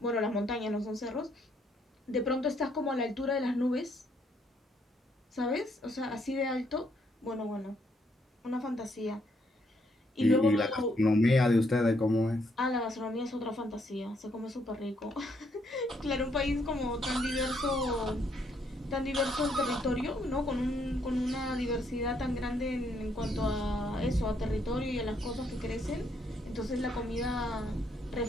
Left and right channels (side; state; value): both; normal; correlation 0.72